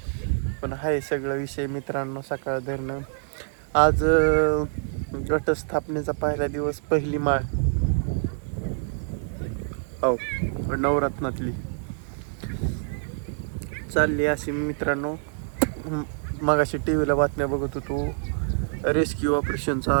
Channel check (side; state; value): left; silent; 61 dB below the other